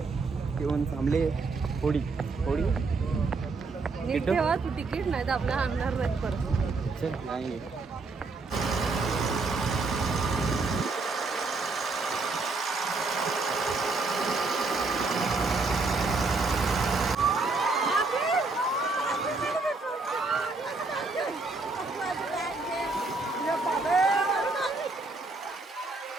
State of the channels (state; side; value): quieter; left; 3.8 dB